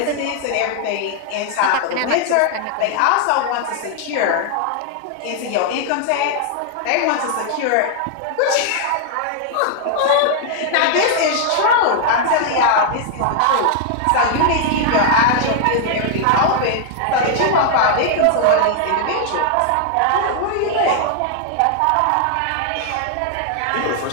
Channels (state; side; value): different; both; correlation 0.00